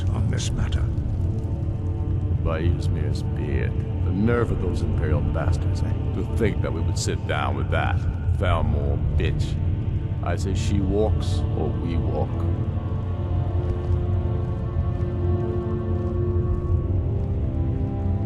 on this matter. By Ysmir's beard, the nerve of those Imperial bastards, eh? To think that we would sit down with that Thalmor bitch. I say she walks, or we walk.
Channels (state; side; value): identical; both; correlation 1.00